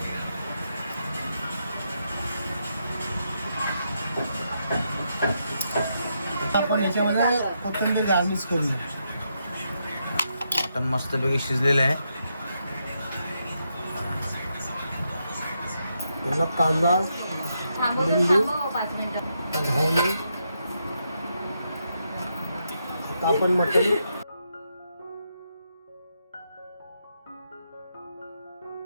आपण याच्यामध्ये कोथिंबीर गार्निश करूया. मटण मस्तपैकी शिजलेलं आहे. पुन्हा कांदा लिंबू घावणे. आता आपण मटण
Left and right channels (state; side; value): inverted; both; correlation -0.81